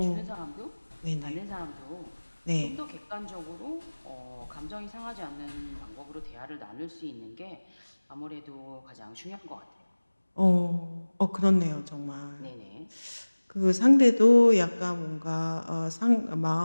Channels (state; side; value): inverted; both; correlation -1.00